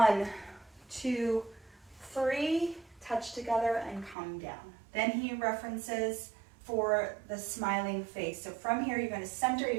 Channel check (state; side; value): drops out; left; at 4.2 s